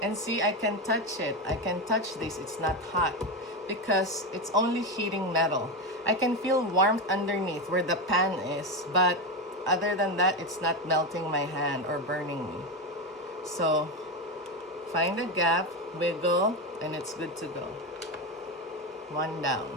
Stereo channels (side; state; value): both; normal; correlation 0.15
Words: And see, I can touch it. I can touch this. It's not hot because it's only heating metal. I can feel warmth underneath where the pan is, but other than that, it's not melting my hand or burning me. So find a gap, wiggle, and it's good to go. One down.